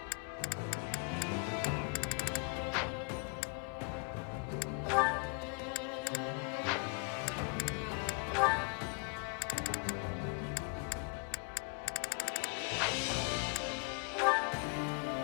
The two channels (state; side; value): quieter; right; 33.9 dB